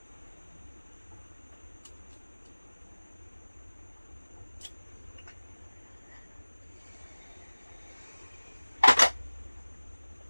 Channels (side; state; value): both; inverted; correlation -1.00